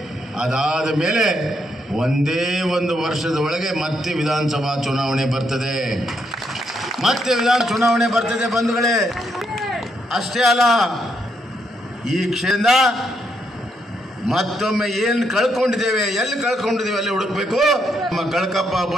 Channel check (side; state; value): both; normal; correlation 0.77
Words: ಅದಾದ ಮೇಲೆ ಒಂದೇ ಒಂದು ವರ್ಷದ ಒಳಗೆ ಮತ್ತೆ ವಿಧಾನಸಭಾ ಚುನಾವಣೆ ಬರ್ತದೆ. ಬಂಧುಗಳೇ, ಅಷ್ಟೇ ಅಲ್ಲ, ಈ ಕ್ಷೇತ್ರ ಮತ್ತೊಮ್ಮೆ ಏನು ಕಳ್ಕೊಂಡಿದ್ದೇವೆ, ಎಲ್ಲಿ ಕಳ್ಕೊಂಡಿದ್ದೇವೆ ಅಲ್ಲಿ ಹುಡುಕಬೇಕು. ನಮ್ಮ ಕಳಕಪ್ಪ